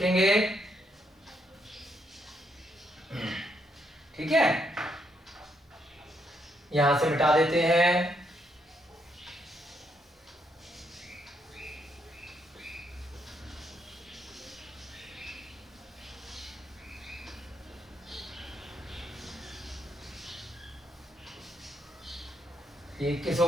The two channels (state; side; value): normal; both; correlation 0.76